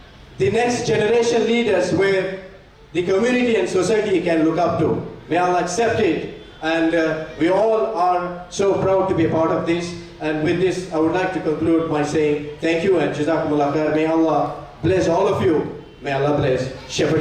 The next generation leaders where the community and society can look up to. May Allah accept it. And we all are so proud to be a part of this. And with this, I would like to conclude by saying thank you and Jazakumullah khair. May Allah bless all of you. May Allah bless Shepherd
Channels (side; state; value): both; identical; correlation 1.00